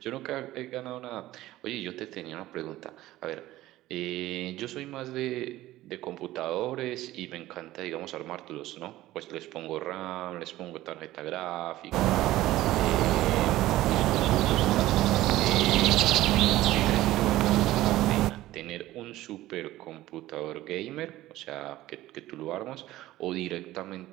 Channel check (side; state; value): left; quieter; 15.9 dB